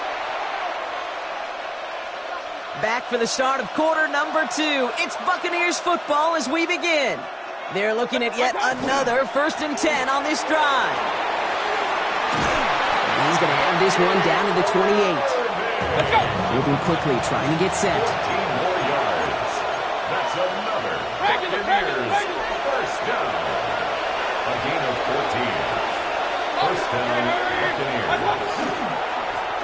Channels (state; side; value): identical; both; correlation 1.00